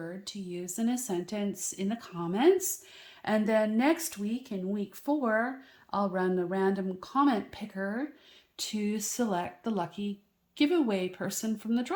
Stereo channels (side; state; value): both; identical; correlation 1.00